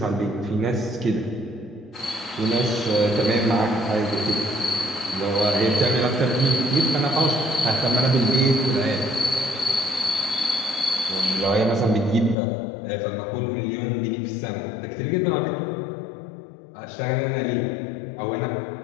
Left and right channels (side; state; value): right; drops out; at 12.4 s